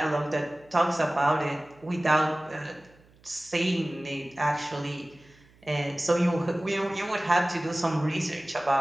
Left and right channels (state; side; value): noise; right; hum, 29 dB below the sound